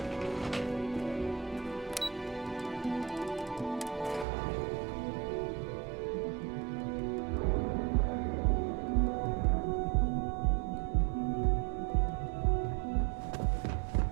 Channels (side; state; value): left; drops out; at 4.2 s